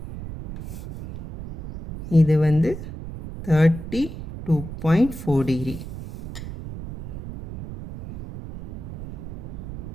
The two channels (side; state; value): right; noise; rumble, 10 dB below the sound